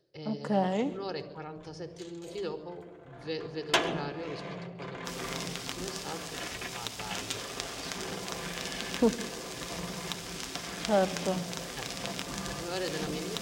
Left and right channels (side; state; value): both; identical; correlation 1.00